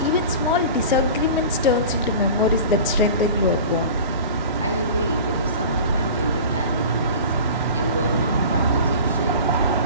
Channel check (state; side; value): inverted; both; correlation -0.37